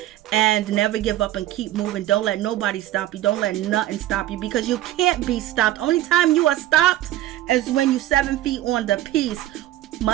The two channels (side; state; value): left; quieter; 14.2 dB